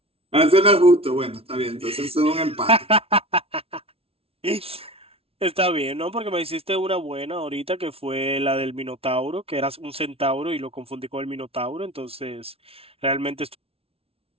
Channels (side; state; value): left; late; 0.28 ms